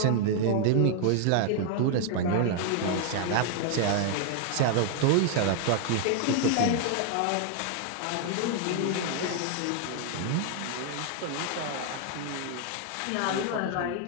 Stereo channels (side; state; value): both; different; correlation 0.00